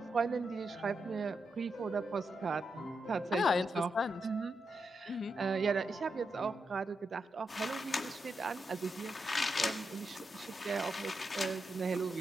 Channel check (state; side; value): normal; both; correlation 0.85